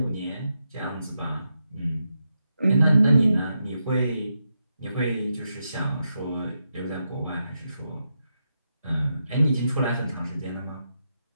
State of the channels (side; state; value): both; inverted; correlation -0.85